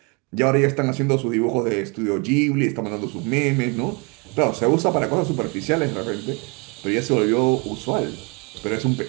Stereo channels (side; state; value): left; quieter; 31.2 dB